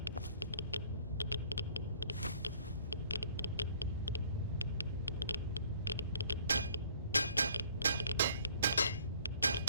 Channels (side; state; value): both; inverted; correlation -0.57